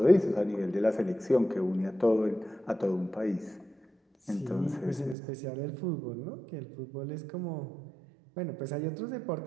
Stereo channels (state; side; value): drops out; left; at 5.2 s